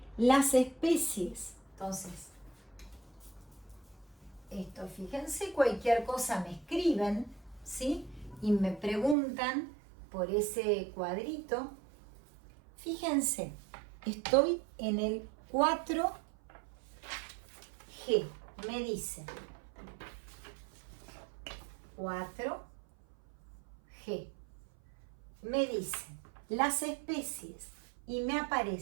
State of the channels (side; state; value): left; drops out; at 9.2 s